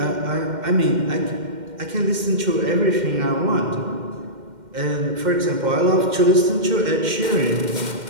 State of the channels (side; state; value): left; late; 2.1 ms